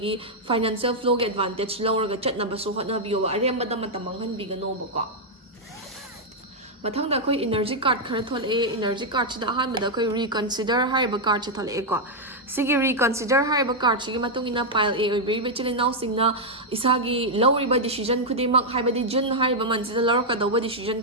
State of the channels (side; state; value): both; normal; correlation -0.03